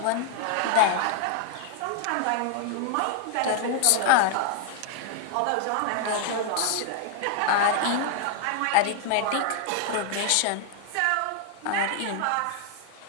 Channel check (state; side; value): different; both; correlation 0.00